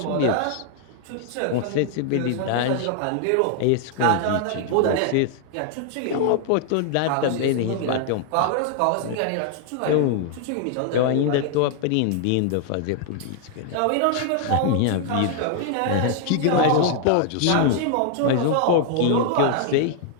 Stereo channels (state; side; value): different; both; correlation 0.00